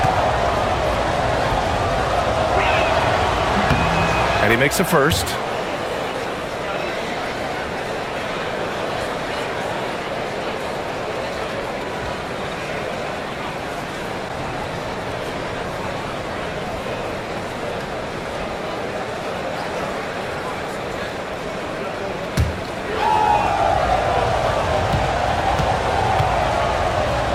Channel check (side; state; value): both; identical; correlation 1.00